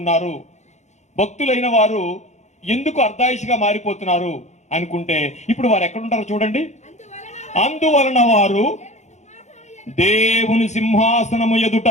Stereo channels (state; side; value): late; right; 0.33 ms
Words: భక్తులైన వారు ఎందుకు అర్ధాయుషిగా మారిపోతున్నారు అనుకుంటే, ఇప్పుడు వారు ఎక్కడుంటారో చూడండి. అందువలన వారు దేవుని సింహాసనము ఎదుట.